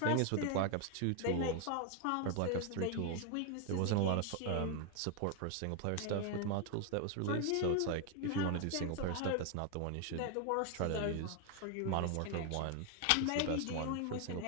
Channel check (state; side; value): different; both; correlation 0.01